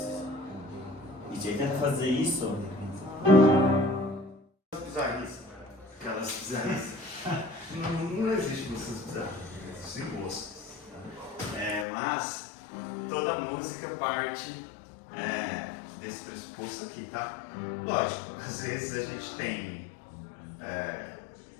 E aí tenta fazer isso. Bizarrice. Aquelas bizarrices. Não existe músicas bizarras, existem gostos. Mas toda música parte desse pressuposto aqui, tá? Lógico, às vezes a gente tem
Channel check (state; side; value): drops out; right; at 11.9 s